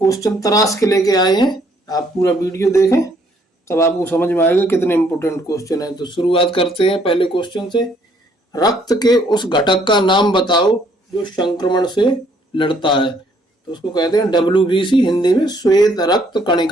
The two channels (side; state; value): both; normal; correlation 0.66